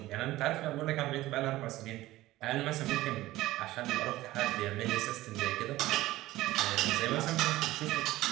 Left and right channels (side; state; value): left; quieter; 16.8 dB